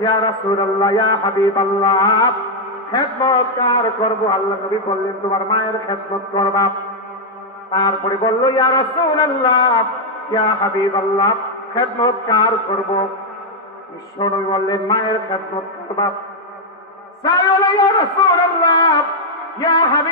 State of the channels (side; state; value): both; normal; correlation -0.01